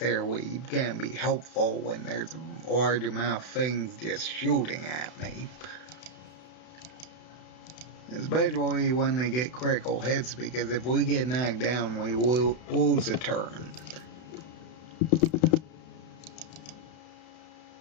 going to be helpful when there's a large amount of things just shooting at me. Especially when they get critical hits, because if we get knocked down, we will lose a turn.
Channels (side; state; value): right; late; 32 ms